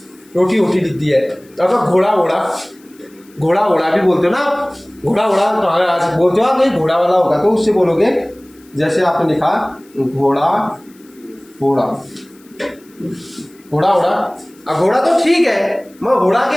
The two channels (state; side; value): noise; left; hiss, 29 dB below the sound